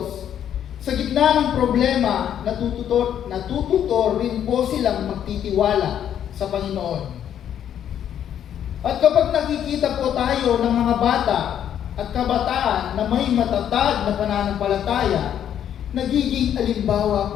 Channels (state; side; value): quieter; right; 9.8 dB